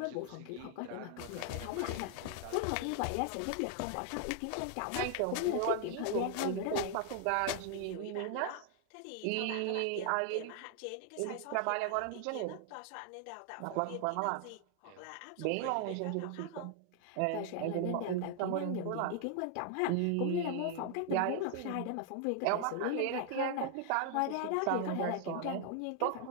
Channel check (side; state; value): both; different; correlation 0.00